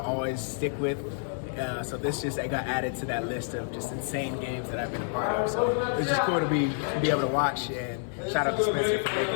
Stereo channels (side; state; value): right; silent; digital silence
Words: always stick with. So this just got added to that list of just insane games that I've been a part of. So it's just cool to be able to watch, and shout out to Spencer for making